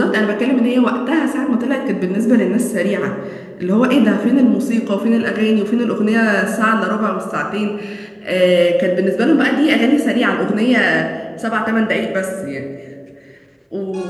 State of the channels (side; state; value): both; identical; correlation 1.00